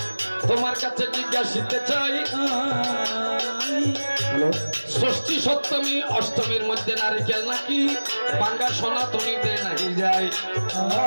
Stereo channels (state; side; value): inverted; both; correlation -1.00